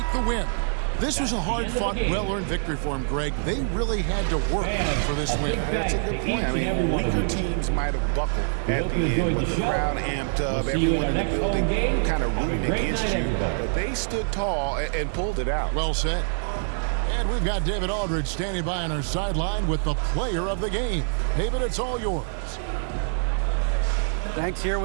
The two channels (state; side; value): silent; left; digital silence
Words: the win. This was a hard-fought, well-earned victory for them, Greg. They really had to work for this win. That's a good point. I mean, weaker teams might have buckled at the end with the crowd amped up, everyone in the building kind of rooting against you. But they stood tall and pulled it out. Well said. And we've got David Aldridge standing by on our sideline with the player of the game. David, it's all yours. Thanks. Here